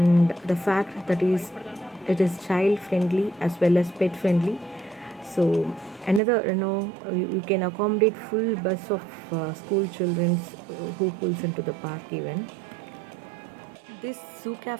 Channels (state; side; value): drops out; left; at 6.2 s